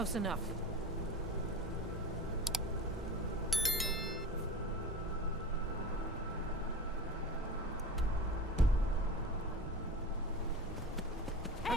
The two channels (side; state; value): both; normal; correlation 0.31